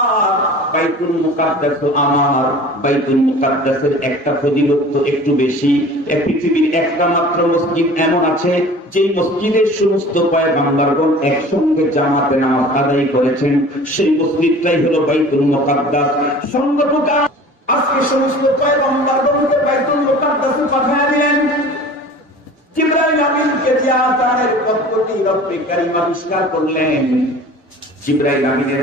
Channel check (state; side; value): normal; both; correlation 0.43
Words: বাইতুল মুকাদ্দাস আমার। বাইতুল মুকাদ্দাসের একটা ফজিলত তো একটু বেশি। পৃথিবীর একটা মাত্র মসজিদ এমন আছে যে মসজিদের সমস্ত পয়গম্বরগণ একসঙ্গে জামাতে নামাজ আদায় করেছেন, সেই মসজিদটাই হলো বাইতুল মুকাদ্দাস। সঙ্গতটা আজকে সমস্ত পয়গম্বরগণকে বাইতুল মুকাদ্দাসে পাঠিয়ে দিলেন। জিবরাইল আমিনকে দিয়ে আযানের পদ্ধতি রব্বে কারীম আবিষ্কার করলেন। জিবরাইল আমিনের